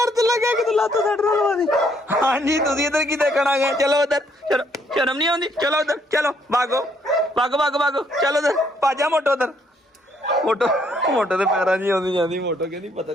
ਤੇ ਲੱਗਾ ਕਿ ਤੂੰ ਲੱਤ ਛੱਡ ਰਲਵਾ ਦੀ। ਹਾਂਜੀ ਤੁਸੀਂ ਇੱਧਰ ਕੀ ਦੇਖਣ ਆ ਗਏ? ਚਲੋ ਉੱਧਰ ਚਲੋ ਸ਼ਰਮ ਨਹੀਂ ਆਉਂਦੀ ਚਲੋ ਉੱਧਰ ਚਲੋ ਭਾਗੋ ਚਲੋ ਉੱਧਰ ਭਾਜਾ ਮੋਟੋ ਉੱਧਰ ਮੋਟੋ ਦੇ ਪੈਰਾਂ 'ਚ ਆਉਂਦੀ ਜਾਂਦੀ। ਮੋਟੋ ਕਹਿੰਦੀ ਪਤਾ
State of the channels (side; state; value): both; normal; correlation 0.69